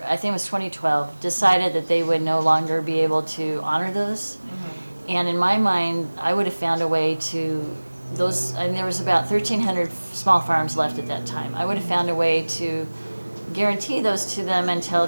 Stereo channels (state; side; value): inverted; both; correlation -1.00